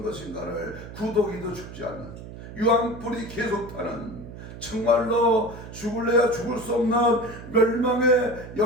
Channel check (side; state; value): right; noise; hum, 13 dB below the sound